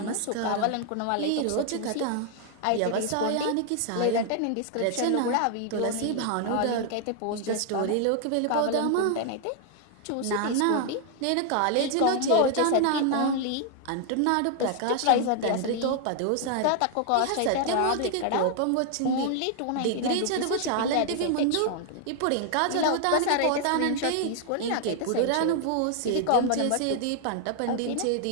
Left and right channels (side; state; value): both; different; correlation 0.00